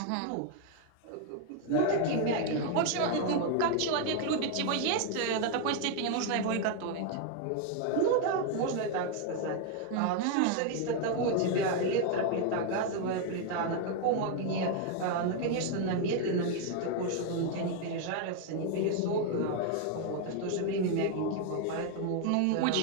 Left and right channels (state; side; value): different; both; correlation 0.01